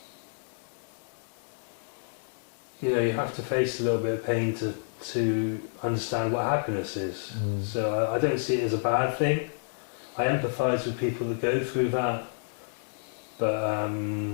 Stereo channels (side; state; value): right; silent; digital silence